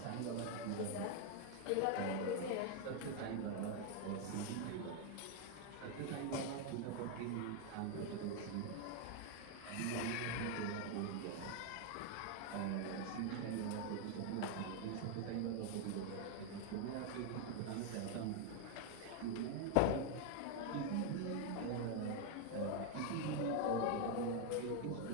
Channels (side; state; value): both; different; correlation 0.01